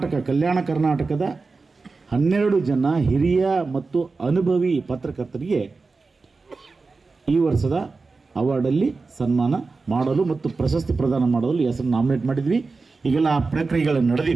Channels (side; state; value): left; quieter; 4.1 dB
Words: ಕಲ್ಯಾಣ ಕರ್ನಾಟಕದ 12 ಜನ ಹಿರಿಯ ಮತ್ತು ಅನುಭವಿ ಪತ್ರಕರ್ತರಿಗೆ ಈ ವರ್ಷದ ಅವಾರ್ಡಲ್ಲಿ ಸನ್ಮಾನ ಮಾಡಲು ಮತ್ತು ಪ್ರಶಸ್ತಿ ಪ್ರದಾನ ಮಾಡಲು ಹೆಸರು ನಾಮಿನೇಟ್ ಮಾಡಿದ್ವಿ. ಈಗೆಲ್ಲ ಆ ಪ್ರಕ್ರಿಯೆಗಳು